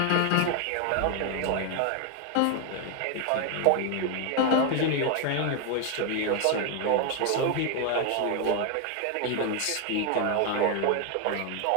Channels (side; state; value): both; different; correlation 0.01